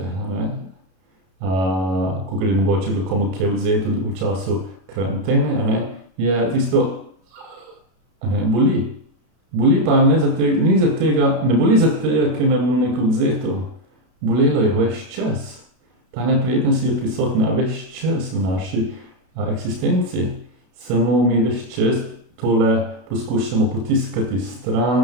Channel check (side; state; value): left; late; 32 ms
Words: ko je mogoče bilo komu kje odvzeto v času karantene, je tisto, boli. Boli pa ne boli zato, ker nam je bilo neko odvzeto. Bolelo je ves čas. Ta neprijetnost je prisotna ves čas v naši eksistenci. Samo mi ves čas tole poskušamo potiskati